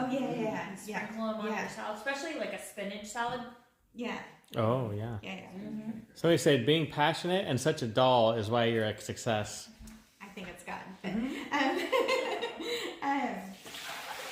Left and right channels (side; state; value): both; identical; correlation 1.00